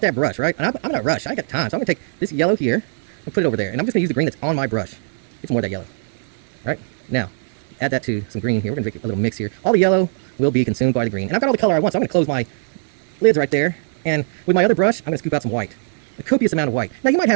that brush, right? And I'm in a rush. I got time. So I'm going to take this yellow here and put it over there. And I'm just going to use the green that's on my brush. Get some more of that yellow. All right? Now, add that to some green here. We're going to make a little mix here. All the yellow will be consumed by the green. And I've got all the color I want, so I'm going to close my lids right there. And with my other brush, I'm going to scoop out some white. A copious amount of white. Now, you might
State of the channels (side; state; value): left; silent; digital silence